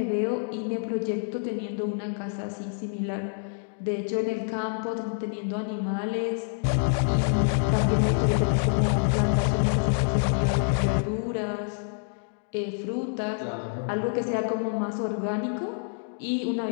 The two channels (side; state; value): right; silent; digital silence